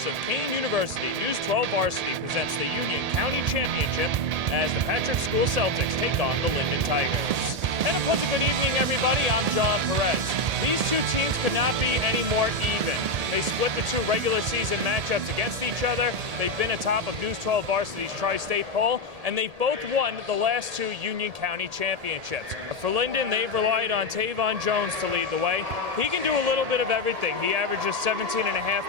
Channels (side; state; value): left; late; 1.8 ms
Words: of Kean University, News 12 Varsity presents the Union County Championship as the Patrick School Celtics take on the Linden Tigers. And a pleasant good evening, everybody. I'm John Perez. These two teams could not be any more even. They split the two regular season matchups against each other. They've been atop of News 12 Varsity's Tri-State poll, and they've both won the last two Union County championships. For Linden, they've relied on Tavon Jones to lead the way. He can do a little bit of everything. He averages 17.5